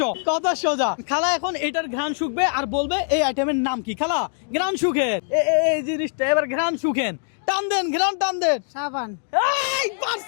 কথা সোজা। খালা এখন এটার ঘ্রাণ শুকবে আর বলবে এই আইটেমের নাম কি। খালা ঘ্রাণ শুকেন, এই জিনিসটা এবার ঘ্রাণ শুকেন। টান দেন, ঘ্রাণ টান দেন। সাবান। এই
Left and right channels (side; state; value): right; silent; digital silence